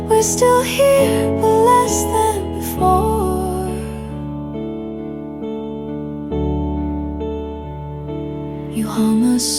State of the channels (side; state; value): both; identical; correlation 1.00